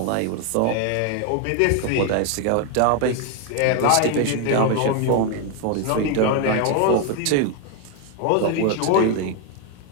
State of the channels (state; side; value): different; both; correlation 0.01